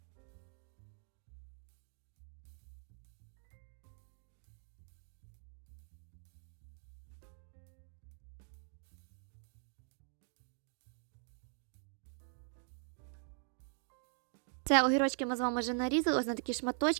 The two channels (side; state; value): left; silent; digital silence